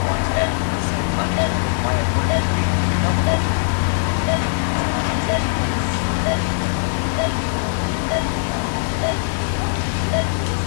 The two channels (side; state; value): right; silent; digital silence